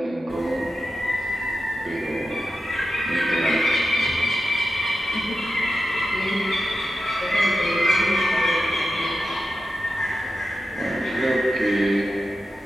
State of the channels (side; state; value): both; normal; correlation 0.90